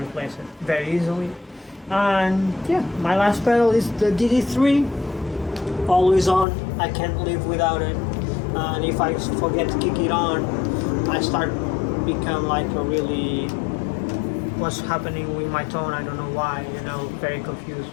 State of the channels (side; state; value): right; drops out; at 6.5 s